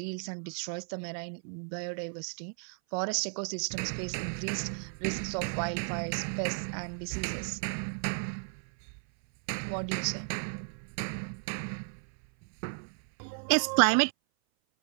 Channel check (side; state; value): left; silent; 55 dB below the other